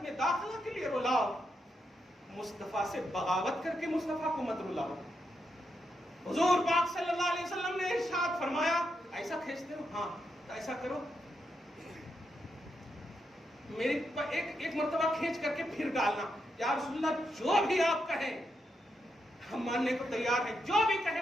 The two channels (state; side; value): normal; both; correlation 0.83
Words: میں داخلہ کے لیے رلاؤ. مصطفیٰ سے بغاوت کر کے مصطفیٰ کو مت رلاؤ. حضور پاک صلی اللہ علیہ وسلم نے ارشاد فرمایا، ایسا کھینچتے ہو؟ ہاں، تو ایسا کرو، میری ایک مرتبہ کھینچ کر کے پھر ڈالنا. یا رسول اللہ جو بھی آپ کہیں ہم ماننے کو تیار ہیں، جو بھی کہیں